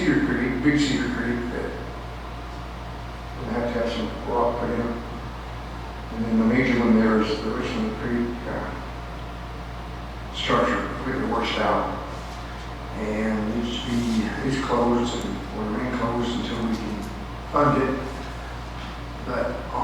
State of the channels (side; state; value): both; identical; correlation 1.00